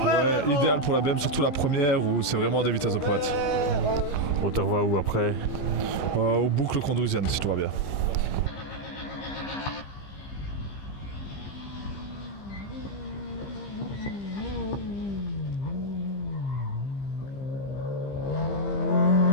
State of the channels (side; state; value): right; late; 15 ms